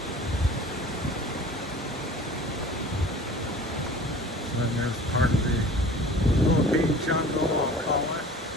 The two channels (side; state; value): both; normal; correlation 0.43